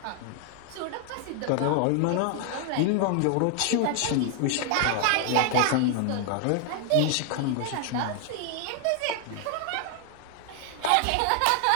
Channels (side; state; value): both; different; correlation 0.00